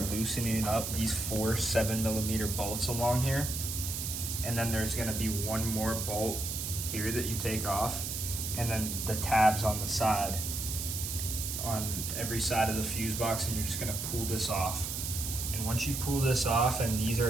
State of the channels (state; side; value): noise; right; hiss, 4 dB below the sound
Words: loosening up these 4 7mm bolts along here. And then there's gonna be one more bolt here that you take off, and then the tabs on the side, on every side of the fuse box, and you're just gonna pull this off. And once you pull this off and these